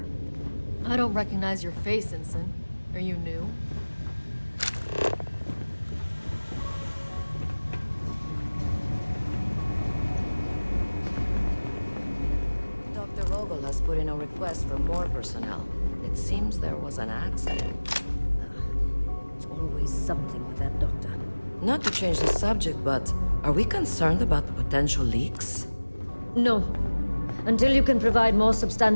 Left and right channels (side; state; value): both; inverted; correlation -1.00